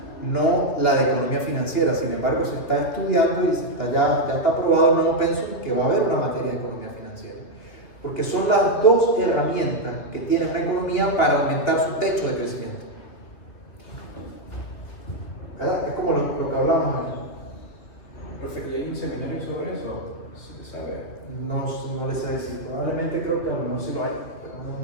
no la de economía financiera. Sin embargo, se está estudiando y ya está aprobado el nuevo pensum que va a haber una materia de economía financiera. Porque son las dos herramientas que tiene una economía para aumentar su techo de crecimiento. ¿Verdad? Es como lo que hablamos aquí. Profe, ¿y hay un seminario sobre eso? ¿Se sabe? No les sé decir, probablemente creo que a lo mejor sí lo hay, pero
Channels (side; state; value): right; late; 2.7 ms